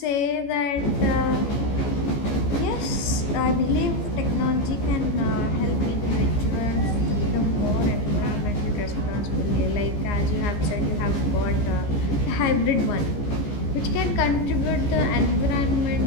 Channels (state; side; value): late; right; 15 ms